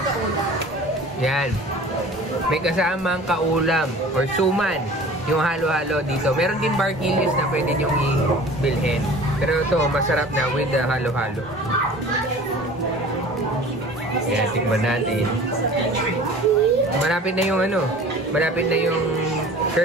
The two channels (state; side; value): normal; both; correlation 0.44